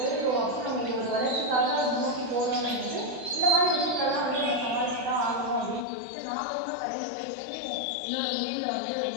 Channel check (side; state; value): right; drops out; at 5.9 s